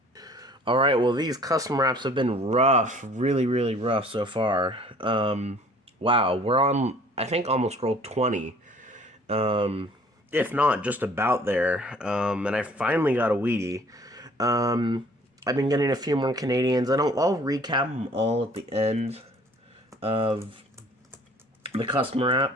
Alright, well, these custom wraps have been rough. Really, really rough so far. Wow, we're on, I think, almost roll 20. If not, just about there. And I finally got a Wheatie. I've been getting a few more Canadians. I'll recap them all at the end of the custom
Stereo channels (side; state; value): both; normal; correlation 0.53